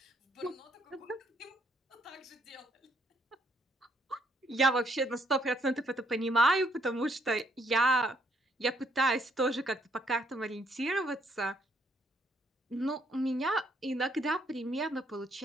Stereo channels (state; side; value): normal; both; correlation 0.70